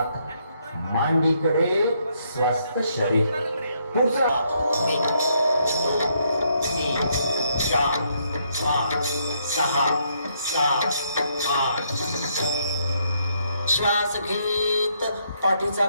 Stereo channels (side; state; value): both; inverted; correlation -0.73